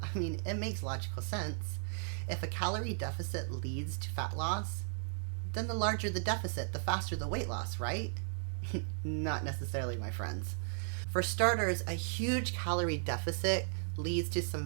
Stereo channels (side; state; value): left; silent; 54 dB below the other